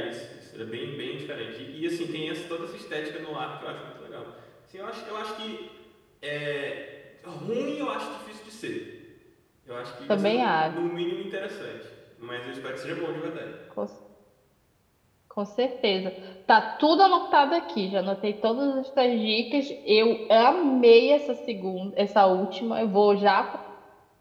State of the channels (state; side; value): identical; both; correlation 1.00